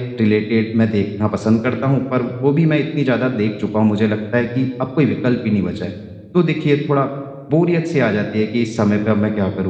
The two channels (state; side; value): identical; both; correlation 1.00